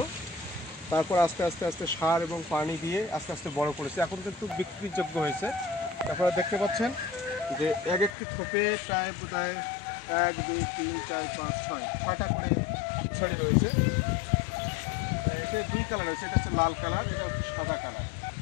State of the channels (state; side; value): drops out; right; at 8.1 s